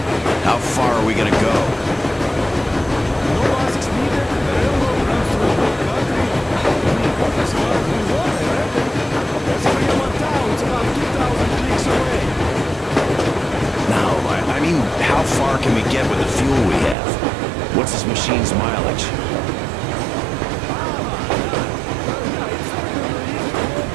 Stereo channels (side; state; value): left; drops out; at 16.9 s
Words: How far are we gonna go? No asks needed. The railroad runs through the whole country. As far as we want, I reckon. There's Fremont Town. It's about 2,000 clicks away. No, I mean, how far can we get with the fuel we have? What's this machine's mileage?